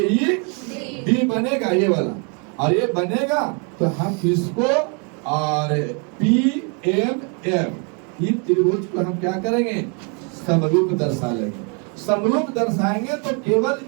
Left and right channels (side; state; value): left; quieter; 36.5 dB